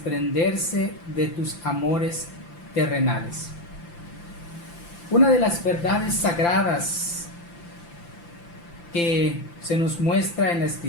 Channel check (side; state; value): right; late; 5.9 ms